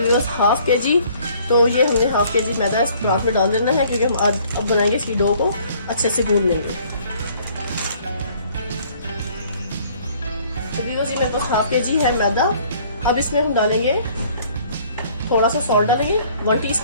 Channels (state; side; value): inverted; both; correlation -0.58